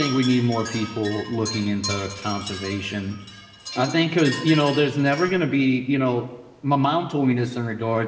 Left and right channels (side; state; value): both; identical; correlation 1.00